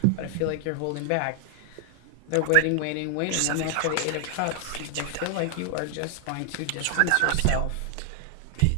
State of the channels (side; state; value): both; different; correlation 0.00